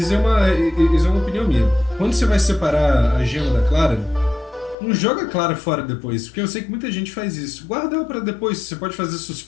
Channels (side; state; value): right; drops out; at 4.8 s